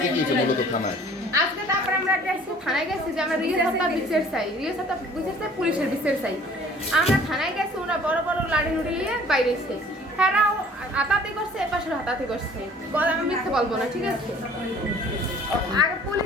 কি হয়েছে মূলত থানায়? আজকে তারপরে আমরা থানায় গেছি যে আমরা রিয়াসতা বিচার চাই, পুলিশের বিচার চাই। আমরা থানায় গেছি, ওরা বড় বড় লাঠি নুড়ি নিয়ে বাইরে এসছে, হ্যাঁ হাতাহাতি করছে, এপাশে হাতাহাতি করছে। আমি মিথ্যে বলবো না, ঠিক আছে। আগে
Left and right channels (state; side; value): normal; both; correlation 0.52